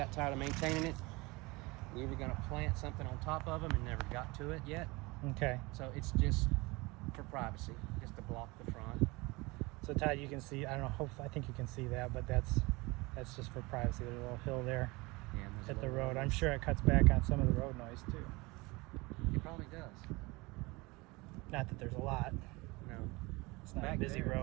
tired of maintaining it. We were going to plant something on top of them and never got to it yet. Okay. So it's just for privacy, just to block the front. So Todd, you can see, I don't know, I think you can see that, but that's just for privacy. There's a little hill there Yeah, and there's at a the little road. I'm noise. sure it cuts back on some of the road noise too. It probably does. Not that there's a lot. No, It's not Back a busy there.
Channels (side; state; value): left; quieter; 24.0 dB